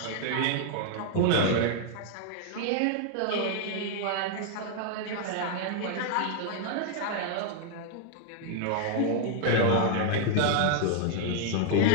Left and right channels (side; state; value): both; different; correlation 0.00